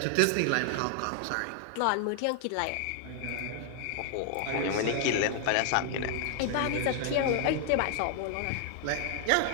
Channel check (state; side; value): different; both; correlation 0.00